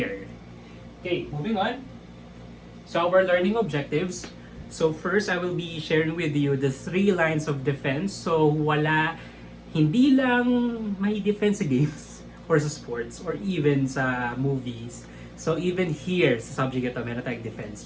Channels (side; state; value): both; identical; correlation 1.00